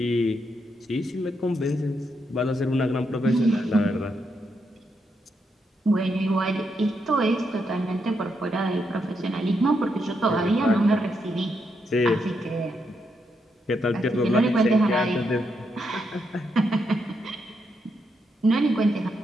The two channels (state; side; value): normal; both; correlation 0.80